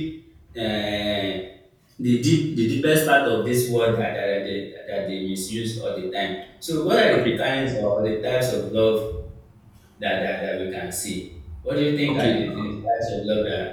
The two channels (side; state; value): both; identical; correlation 1.00